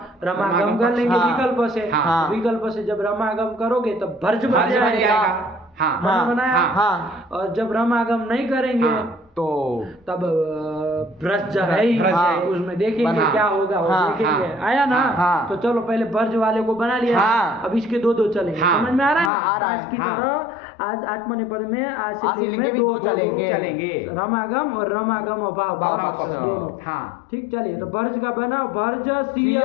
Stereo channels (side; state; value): right; drops out; at 19.3 s